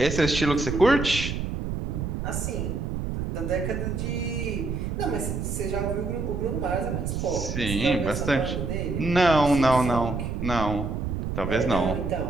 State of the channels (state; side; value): noise; right; rumble, 3 dB below the sound